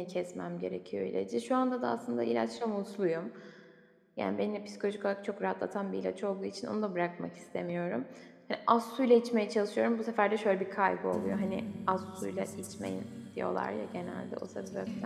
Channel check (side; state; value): both; identical; correlation 1.00